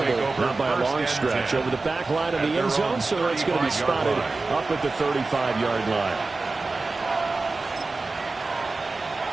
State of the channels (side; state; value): left; quieter; 3.6 dB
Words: not by a long stretch, over the back line of the end zone, so it's going to be spotted up at the 35-yard line.